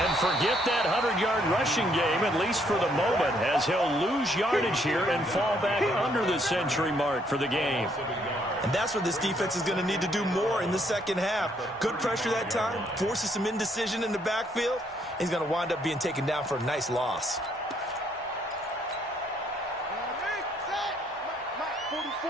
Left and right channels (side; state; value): both; normal; correlation 0.69